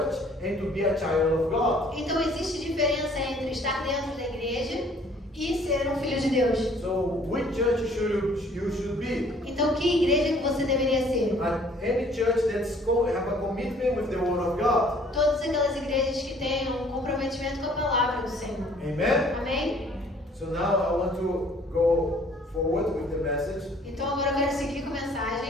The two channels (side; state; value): both; normal; correlation 0.57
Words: and to be a child of God. Então existe diferença entre estar dentro da igreja e ser um filho de Deus. So which church you should be? Então que igreja que você deveria ser? Any church that's have a commitment with the word of God. Todas aquelas igrejas que tenham um comprometimento com a palavra do Senhor. Amen? Amém? So now I want to go forward with the message Então agora eu quero seguir com a